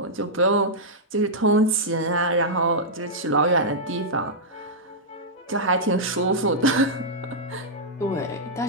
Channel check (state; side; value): normal; both; correlation -0.08